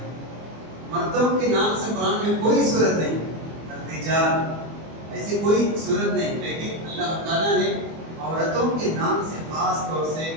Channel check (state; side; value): late; left; 24 ms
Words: مردوں کے نام سے قرآن میں کوئی صورت نہیں، رجال ایسی کوئی صورت نہیں، لیکن اللہ تعالیٰ نے عورتوں کے نام سے خاص طور سے